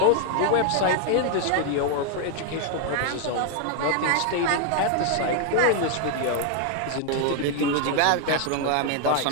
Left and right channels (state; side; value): different; both; correlation 0.00